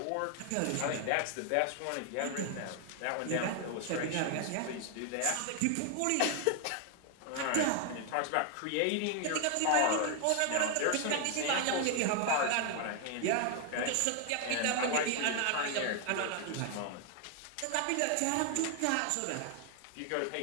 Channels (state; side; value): different; both; correlation 0.01